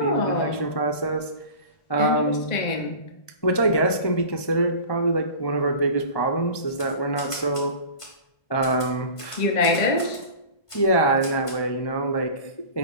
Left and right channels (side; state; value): right; late; 1.2 ms